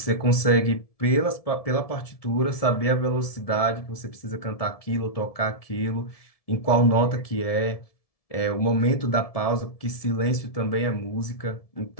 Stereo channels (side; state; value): right; late; 1.7 ms